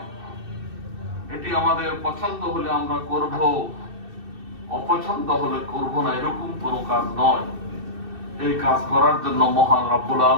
এটি আমাদের পছন্দ হলে আমরা করব, অপছন্দ হলে করব না, এরকম কোনো কাজ নয়। এই কাজ করার জন্য মহান রব্বুল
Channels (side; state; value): left; late; 2.6 ms